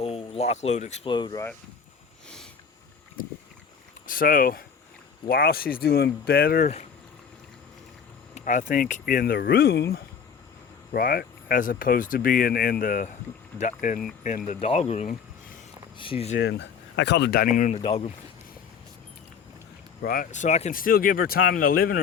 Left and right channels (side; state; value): right; quieter; 6.7 dB